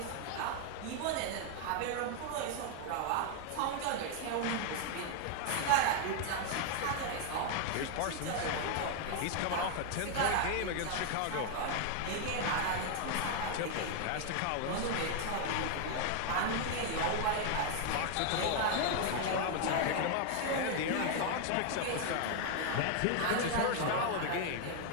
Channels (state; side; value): different; both; correlation 0.00